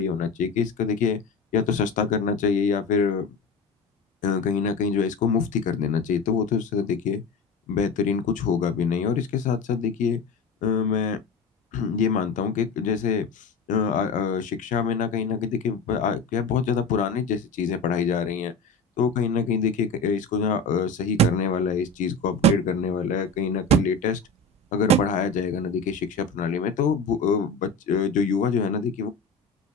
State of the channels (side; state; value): right; quieter; 3.8 dB